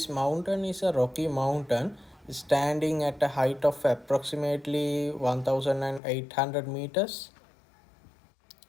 mountain is a rocky mountain standing at a height of approximately 1800 meters.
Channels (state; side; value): drops out; right; at 6.0 s